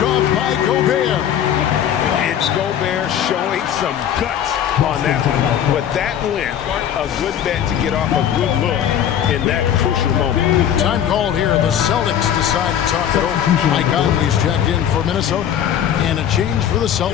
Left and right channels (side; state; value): right; quieter; 9.8 dB